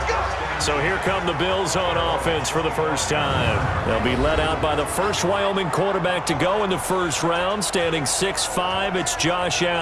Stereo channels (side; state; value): both; identical; correlation 1.00